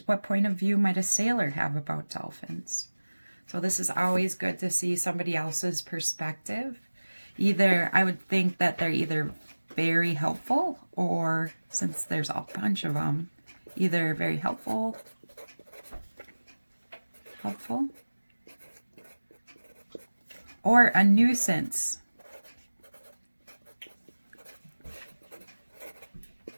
what point of view might a sailor have about dolphins? So this is always good to see somebody else's perspective. Either, I would think that they're either very helpful, or since there's a bunch of them, either very helpful, or a nuisance.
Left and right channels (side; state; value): both; inverted; correlation -1.00